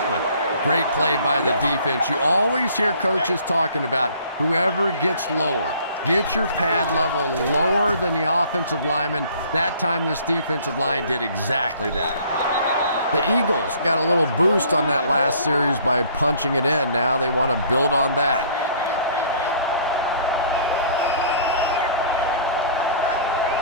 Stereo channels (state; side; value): inverted; both; correlation -0.54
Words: Great play by the defense. You always hear coaches talking about whoever gets lower. Get your pad level lower than the offensive lineman. That time this defensive line did exactly that. The Eagles got a little boost on that last series by punching it in. Now they want to build on that.